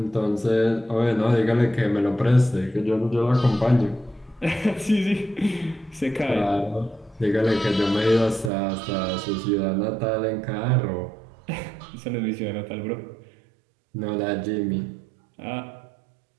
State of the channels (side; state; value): left; drops out; at 8.5 s